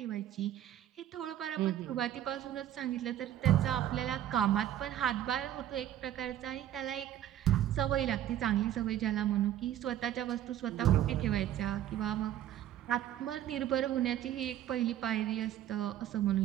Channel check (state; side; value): quieter; left; 11.8 dB